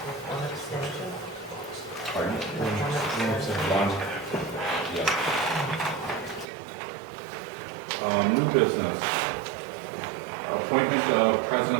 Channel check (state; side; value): drops out; left; at 6.5 s